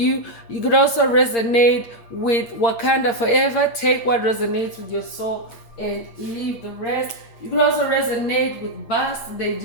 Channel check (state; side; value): late; right; 8.7 ms